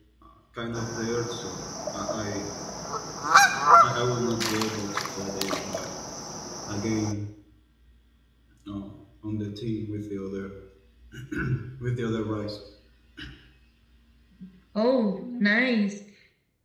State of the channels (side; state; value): both; identical; correlation 1.00